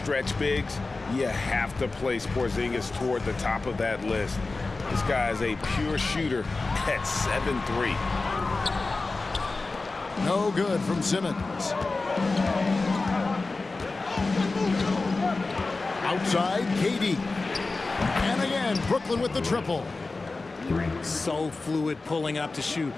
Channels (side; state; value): right; quieter; 3.6 dB